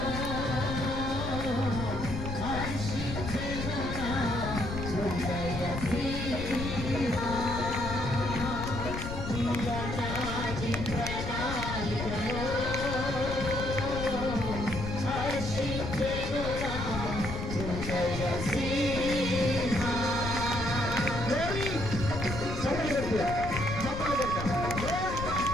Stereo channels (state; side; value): noise; left; rumble, 5 dB below the sound